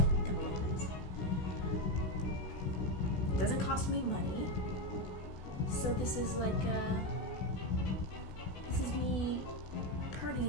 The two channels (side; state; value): right; late; 16 ms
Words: gonna look nice. It doesn't cost me money. So this is like, this is me